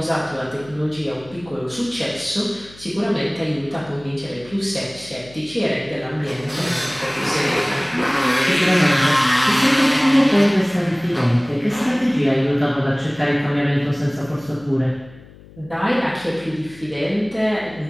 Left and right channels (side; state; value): left; noise; hum, 22 dB below the sound